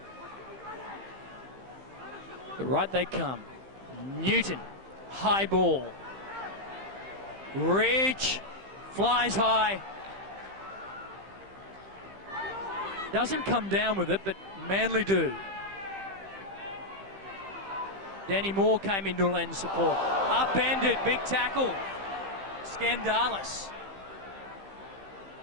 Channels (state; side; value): late; left; 15 ms